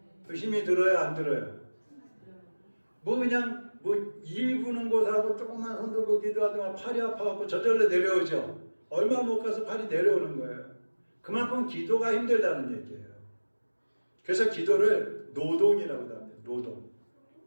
그 힘이 들어요, 안 들어요? 그냥 일 부는 곳하고 조금만 손 들고 기도하다가 팔이 아파갖고 저절로 내려오죠? 얼마 못 가서 팔이 내려오는 거예요. 그만큼 기도가 힘들다는 얘기예요. 그래서 기도를 노동이라고 합니다. 노동.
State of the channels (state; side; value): inverted; both; correlation -1.00